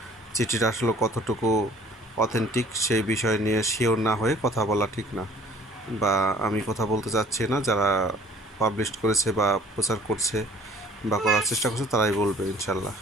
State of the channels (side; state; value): both; normal; correlation 0.53